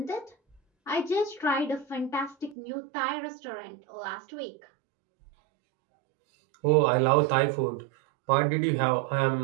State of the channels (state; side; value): drops out; left; at 2.6 s